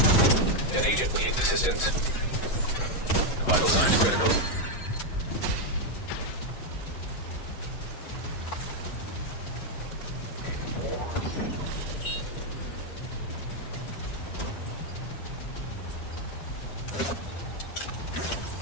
An agent needs assistance. Vital signs critical.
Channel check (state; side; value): late; right; 7.9 ms